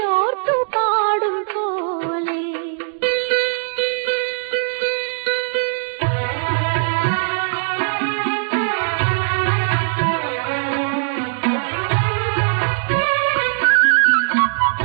ഓർത്തു പാടും പോലെ.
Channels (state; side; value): silent; left; digital silence